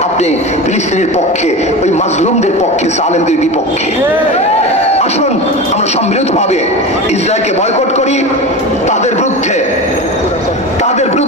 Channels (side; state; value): both; normal; correlation 0.26